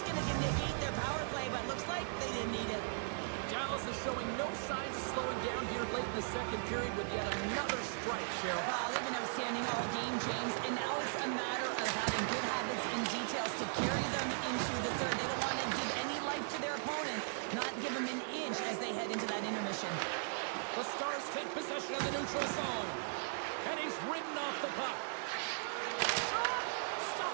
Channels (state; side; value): silent; left; digital silence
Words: going to negate their power play, but looks like they didn't need it. Dallas is showing no signs of slowing down here late in the second period with yet another strike, Cheryl. Wow, they've been outstanding all game, James, and now it's a matter of having good habits and details to carry them into the third. They don't want to give any life to their opponent, not give them an inch as they head into that intermission. The Stars take possession of the neutral zone. And he's ridden off the puck. Shot!